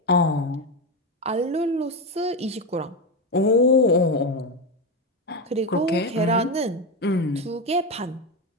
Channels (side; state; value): both; normal; correlation 0.13